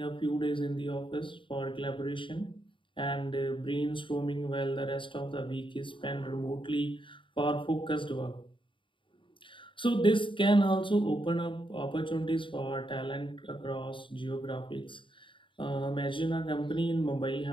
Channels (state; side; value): late; right; 0.24 ms